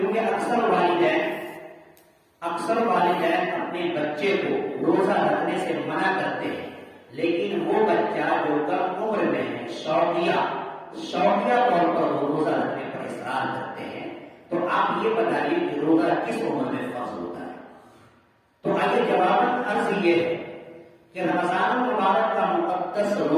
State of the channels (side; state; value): both; identical; correlation 1.00